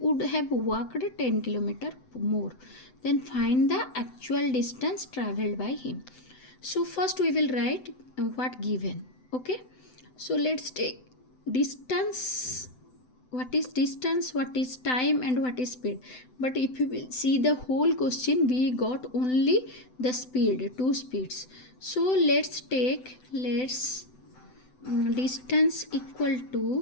have walked 10 km more. Then find the actual distance traveled by him. So first we will write what given. Okay. So let's take distance. What is distance, what is time, and what is speed. But if you will see the whole question, we got only the speed, two speeds. So let's take distance equal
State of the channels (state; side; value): late; right; 7.9 ms